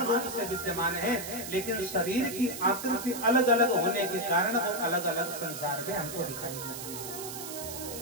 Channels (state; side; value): noise; right; hiss, 8 dB below the sound